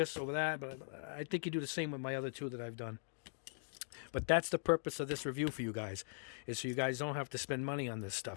over that. But I think you do the same with my other two that I've done. But that's the purpose of this review for you guys, is so you guys don't have to spend money on this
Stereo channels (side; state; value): right; silent; digital silence